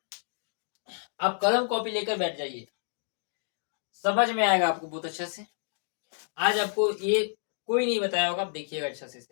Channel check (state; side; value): silent; right; digital silence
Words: कलम कॉपी लेकर बैठ जाइए, समझ में आएगा आपको बहुत अच्छे से। आज आपको ये कोई नहीं बताया होगा, आप देखिएगा अच्छे